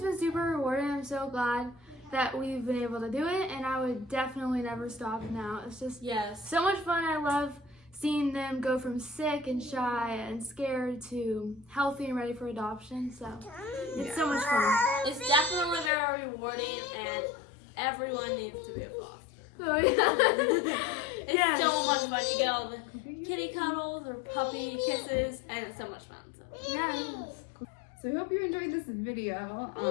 been super rewarding. I'm so glad that we've been able to do it, and I would definitely never stop now. It's just so much fun. I love seeing them go from sick and shy and scared to healthy and ready for adoption. So it's so much fun. It's definitely very rewarding, and everyone needs to be a foster. Oh yeah. It's so much fun. You get all the kitty cuddles or puppy kisses, and it's so much fun. So. Yeah. So we hope you enjoyed this video.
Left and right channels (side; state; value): right; drops out; at 15.9 s